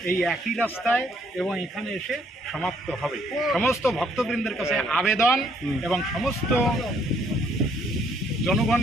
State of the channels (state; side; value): normal; both; correlation 0.67